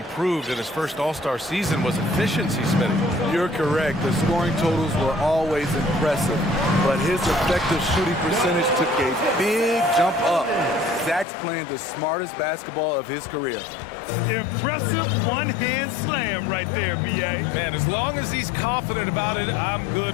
in his first All-Star season was efficiency, Smitty. You're correct. The scoring totals were always impressive, but his effective shooting percentage took a big jump up. Zach's playing the smartest basketball of his career. Impressive one-hand slam right there, B.A. Man, as long as he's confident about it, I'm good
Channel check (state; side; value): drops out; right; at 11.2 s